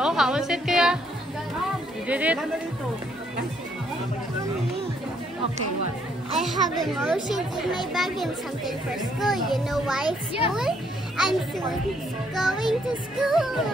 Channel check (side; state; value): both; normal; correlation 0.70